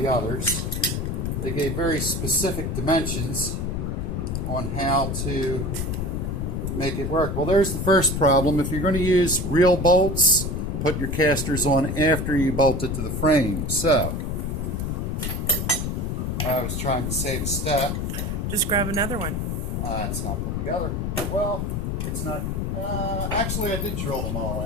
others. They gave very specific dimensions on how to make it work. Well, there's the first problem. If you're going to use real bolts, put your casters on after you bolt it to the frame. So, I was trying to save a step. Just grab another one. It's not put together. Well, it's not. Actually, I did drill them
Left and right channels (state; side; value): noise; left; rumble, 2 dB below the sound